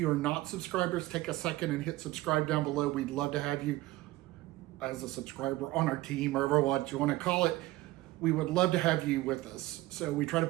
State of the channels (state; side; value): quieter; left; 17.9 dB